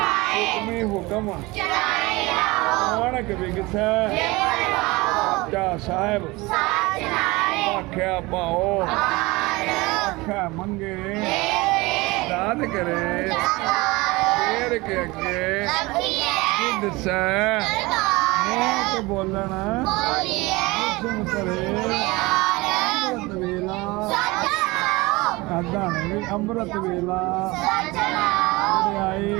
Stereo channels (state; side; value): quieter; left; 22.6 dB